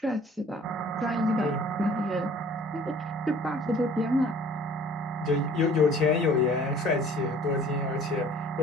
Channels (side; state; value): both; normal; correlation 0.51